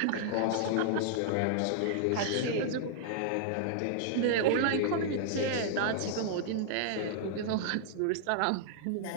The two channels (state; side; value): different; both; correlation -0.01